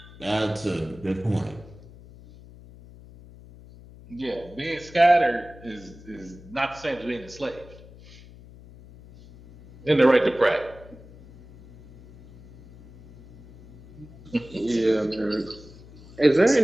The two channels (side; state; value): left; noise; hum, 20 dB below the sound